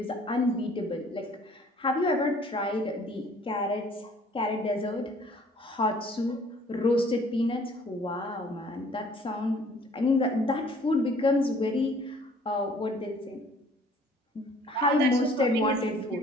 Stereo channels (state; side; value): normal; both; correlation 0.55